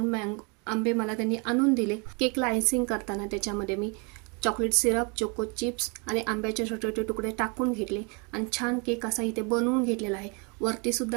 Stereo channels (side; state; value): left; quieter; 32.6 dB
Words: आंबे मला त्यांनी आणून दिले. केकला आयसिंग करताना त्याच्यामध्ये मी चॉकलेट सिरप, चोको चिप्स आणि आंब्याचे छोटे छोटे तुकडे टाकून घेतले आणि छान केक असा इथे बनवून घेतलेला आहे.